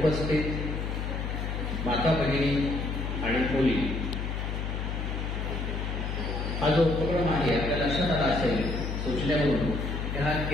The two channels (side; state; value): left; noise; hum, 3 dB below the sound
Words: माता भगिनी आणि मुली, हा जो उपक्रम आहे आपल्या लक्षात आला असेल सूचनेवरून की हा